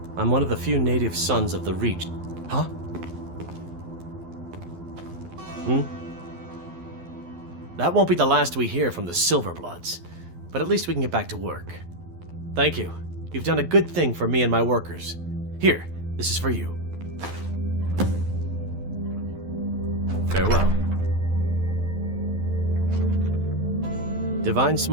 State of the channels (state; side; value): late; left; 12 ms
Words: I'm one of the few native sons of the Reach. Huh? That won't be the last we hear from the Silverbloods, but at least we can get back to work. Thank you. You've done a good thing for me and my workers. Here, this is for you. Farewell. Divine